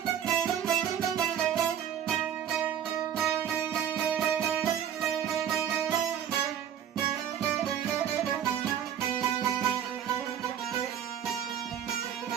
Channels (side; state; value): left; quieter; 9.5 dB